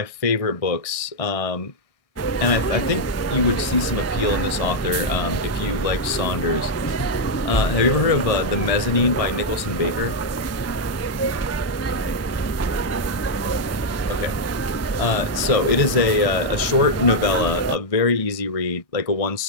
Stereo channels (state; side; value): late; right; 1.6 ms